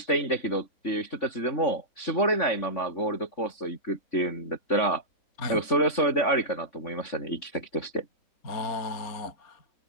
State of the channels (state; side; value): late; right; 3.5 ms